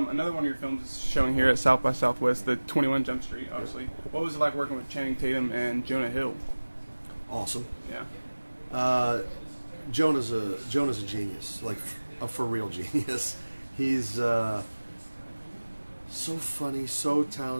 Another one of your films is showing here at South by Southwest, the 21 Jump Street, obviously. What was it like working with Channing Tatum and Jonah Hill? Awesome. Yeah. Jonah's a genius, like a for real genius. He's so funny, so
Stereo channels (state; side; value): inverted; both; correlation -1.00